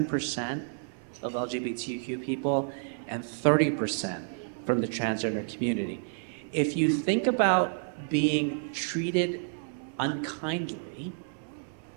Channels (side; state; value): left; silent; 58 dB below the other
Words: of LGBTQ people and 30% from the transgender community. If you think about being treated unkindly